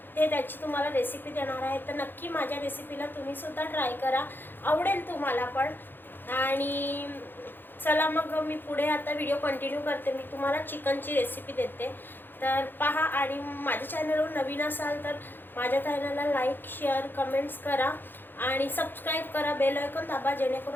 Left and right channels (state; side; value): late; right; 0.096 ms